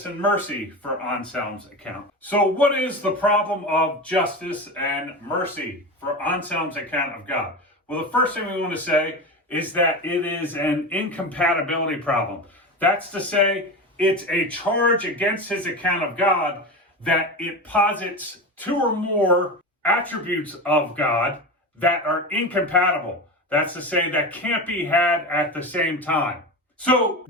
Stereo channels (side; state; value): both; normal; correlation 0.24